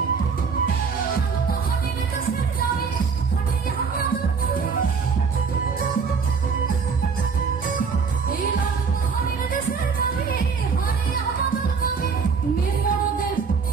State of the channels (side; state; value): left; quieter; 5.5 dB